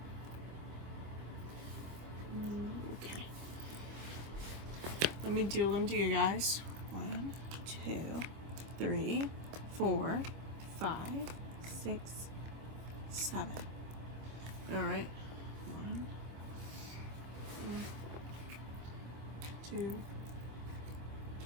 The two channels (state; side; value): late; left; 25 ms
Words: Okay. Let me deal them to you guys. 1, 2, 3, 4, 5, 6, 7. Alright. 1, 2,